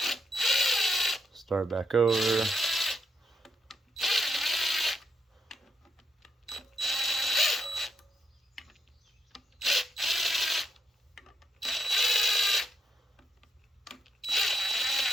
start back over.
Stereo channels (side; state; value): both; normal; correlation 0.81